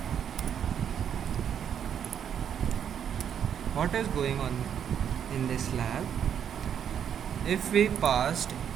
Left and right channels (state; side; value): quieter; left; 8.6 dB